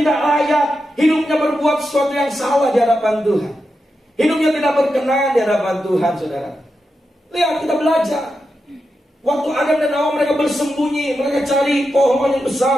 layak, hidupnya berbuat sesuatu yang salah di hadapan Tuhan. Hidupnya tidak berkenan di hadapan Tuhan, saudara. Lihat, kita belajar. Waktu Adam dan Hawa mereka bersembunyi, mereka cari pohon yang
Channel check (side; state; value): both; normal; correlation 0.88